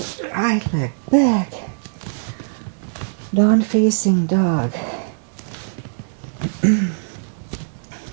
the right leg back. Down facing dog.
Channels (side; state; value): left; silent; digital silence